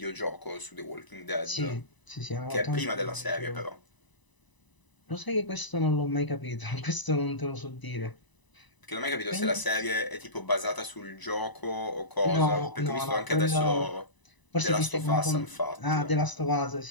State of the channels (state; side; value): late; right; 1.0 ms